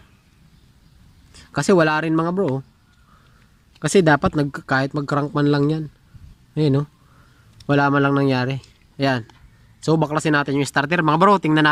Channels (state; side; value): identical; both; correlation 1.00